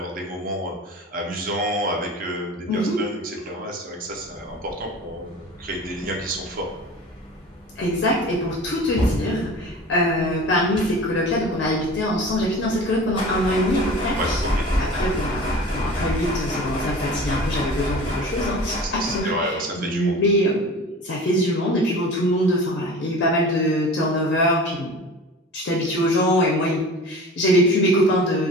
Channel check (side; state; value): both; normal; correlation 0.38